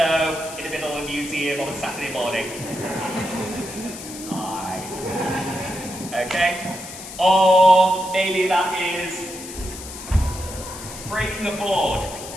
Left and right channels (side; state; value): left; noise; hiss, 12 dB below the sound